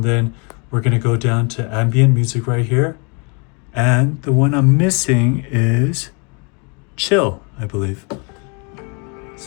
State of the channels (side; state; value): right; quieter; 33.9 dB